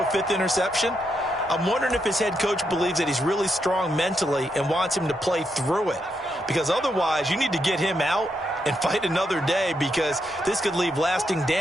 5th interception, I'm wondering if his head coach believes that he's really strong mentally and wants him to play through it. Because otherwise, you need to get him out and fight another day, because this could leave lasting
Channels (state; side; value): normal; both; correlation 0.81